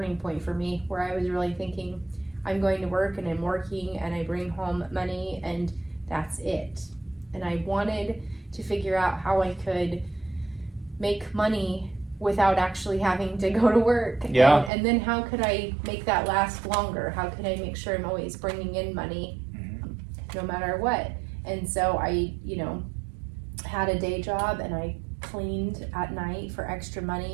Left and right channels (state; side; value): drops out; left; at 14.7 s